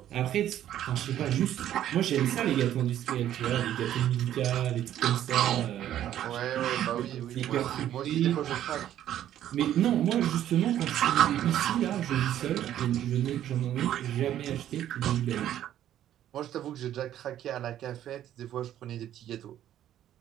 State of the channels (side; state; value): left; quieter; 11.6 dB